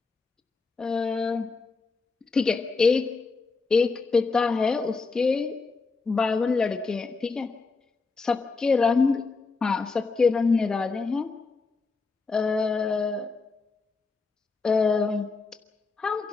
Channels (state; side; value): quieter; right; 4.3 dB